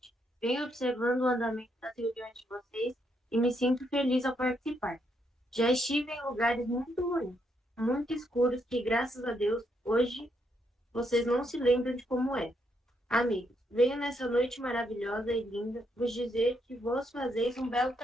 Venho observando o andamento das reuniões de vocês e me sinto feliz ao participar. Já estive em lugares muito ruins, muito escuros, que graças a Deus, hoje, vocês não se lembram de como é. Amigos, venho nessa noite maravilhosa e linda vos dizer que vós fazeis um belo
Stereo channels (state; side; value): normal; both; correlation 0.76